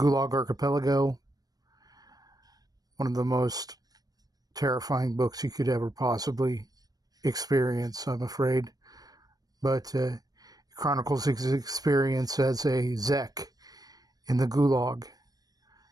Archipelago. One of the most terrifying books you could ever possibly experience, I'm afraid. But it chronicles his experience as a Zek in the Gulag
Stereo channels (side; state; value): left; late; 0.19 ms